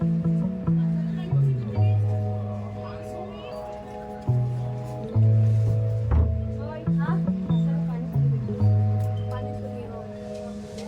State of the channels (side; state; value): both; identical; correlation 1.00